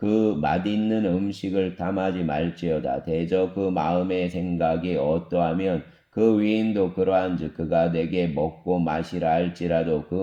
맛있는 음식을 탐하지 말지어다. 대저 그 마음의 생각이 어떠하면 그 위인도 그러한즉 그가 내게 먹고 마시라 할지라도 그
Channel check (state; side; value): identical; both; correlation 1.00